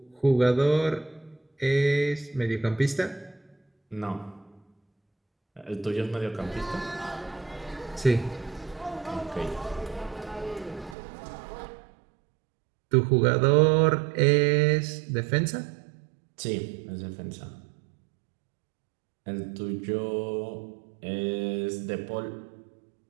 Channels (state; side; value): drops out; left; at 11.0 s